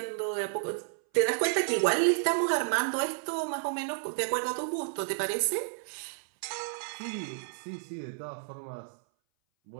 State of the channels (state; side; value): silent; left; 57 dB below the other